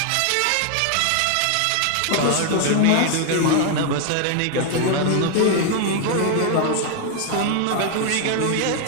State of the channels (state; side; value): different; both; correlation 0.00